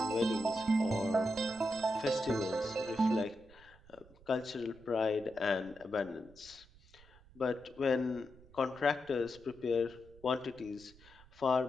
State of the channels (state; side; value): noise; right; rumble, 24 dB below the sound